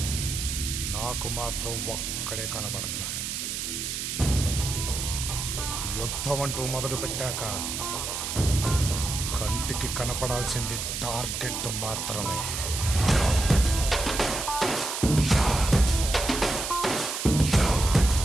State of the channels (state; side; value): noise; right; hiss, 4 dB below the sound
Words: నాకు మాత్రం ఒక్కడే కనబడుతున్నాడు. యుద్ధం అంటూ మొదలు పెట్టాక కంటికి కనపడాల్సింది టార్గెట్ మాత్రమే.